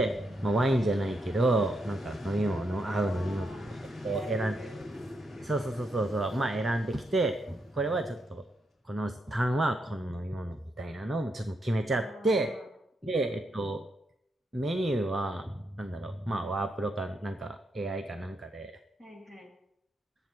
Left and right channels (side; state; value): both; normal; correlation 0.81